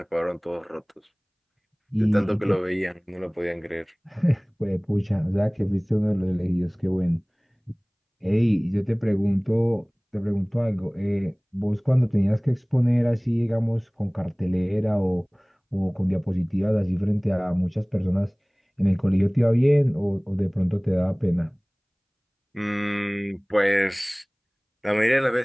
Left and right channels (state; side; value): identical; both; correlation 1.00